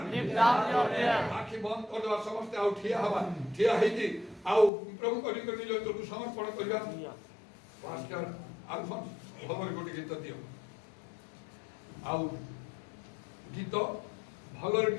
lift up your prayer ଆଖି ବନ୍ଦ କରିଦେବା ସମସ୍ତେ ଆଉ ଠିଆ ହେବା ଠିଆ ହେଇକି ଆଉ ପ୍ରଭୁଙ୍କ ନିକଟରେ ନିଜ ଭିତରକୁ ସମର୍ପଣ କରିବା ପାଷ୍ଟର ଆଲଫନ୍ସ ଭଲରେ ଗୋଟେ ଗୀତ ଦିଅ ଆଉ ଗୀତ ଭଲରେ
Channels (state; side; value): drops out; right; at 4.7 s